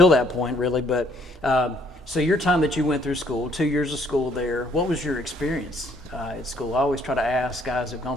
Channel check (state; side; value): normal; both; correlation 0.65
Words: that point really. But so your time that you went through school, 2 years of school there, what was your experience at school? I always try to ask guys who've